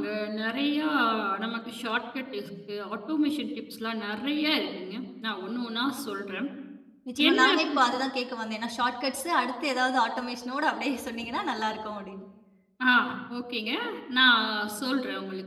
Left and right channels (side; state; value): both; identical; correlation 1.00